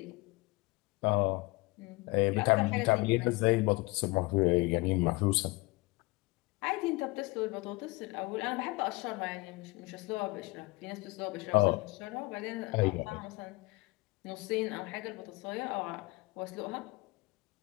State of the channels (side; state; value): right; quieter; 23.8 dB